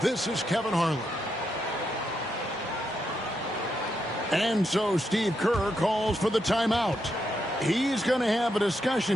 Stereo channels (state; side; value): normal; both; correlation 0.81